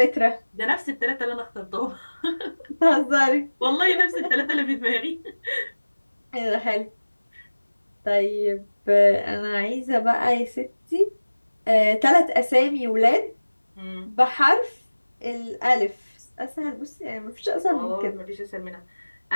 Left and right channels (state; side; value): inverted; both; correlation -1.00